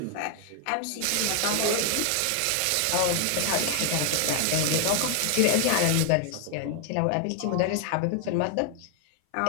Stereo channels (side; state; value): both; different; correlation 0.00